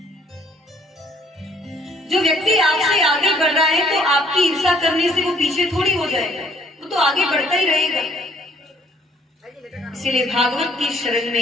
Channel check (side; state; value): both; normal; correlation 0.62